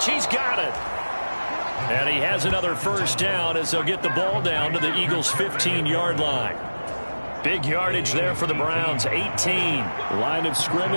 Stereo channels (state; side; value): inverted; both; correlation -1.00